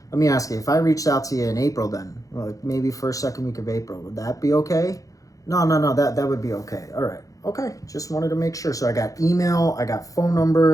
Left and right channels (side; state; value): right; late; 0.17 ms